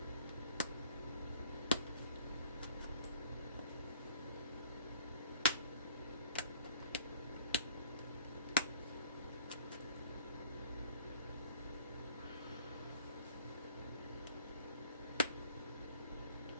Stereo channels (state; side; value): inverted; both; correlation -0.53